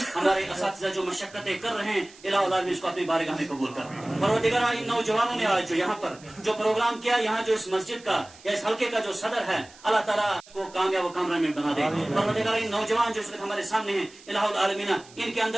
ہمارے اساتذہ جو مشقتیں کر رہے ہیں الہ العالمین اس کو اپنی بارگاہ میں قبول کر. پروردگارہ ان نوجوانوں نے آج جو یہاں پر جو پروگرام کیا یہاں جو اس مسجد کا یا اس حلقے کا جو صدر ہے اللہ تعالیٰ کو کامیاب و کامران بنا دے. پروردگارہ ان نوجوان جو اس وقت ہمارے سامنے ہیں الہ العالمین ان کے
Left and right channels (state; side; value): noise; right; hiss, 23 dB below the sound